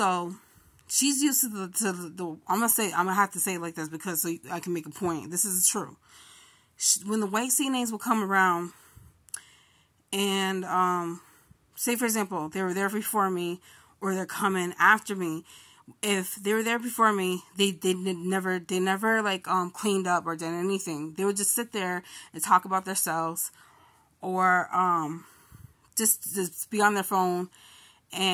she's used to the I'm gonna have to say it like this, because so I can make a point. This is true. When the white CNAs will come around, and say for example they were there before me, or they're coming after me. If they were there before me, they never like cleaned up or did anything. They would just sit there and talk about themselves, or just be on their phone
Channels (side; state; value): both; identical; correlation 1.00